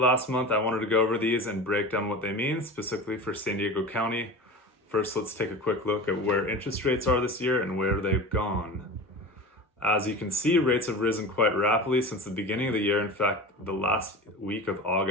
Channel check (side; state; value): both; normal; correlation 0.32